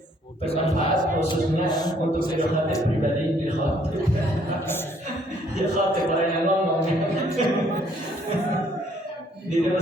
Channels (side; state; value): both; normal; correlation 0.64